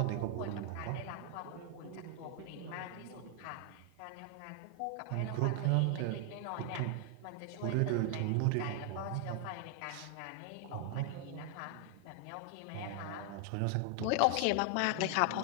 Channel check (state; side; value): different; both; correlation 0.00